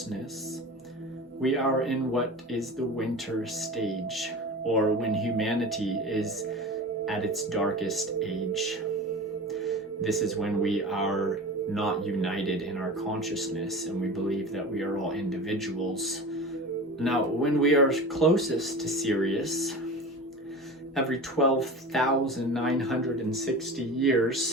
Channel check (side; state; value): both; normal; correlation 0.32